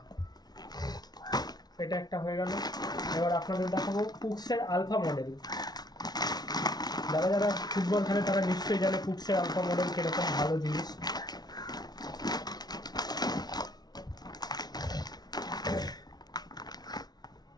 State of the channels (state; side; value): late; right; 0.19 ms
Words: এটা একটা হয়ে গেল। এবার আপনাদের দেখাবো কুকসের আলফা মডেল। যারা যারা ফুটবল খেলে তারা নিশ্চয়ই জানে কুকসের আলফা মডেল কিরকম ভালো জিনিস।